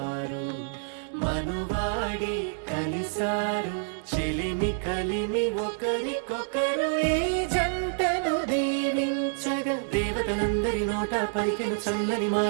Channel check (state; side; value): silent; left; digital silence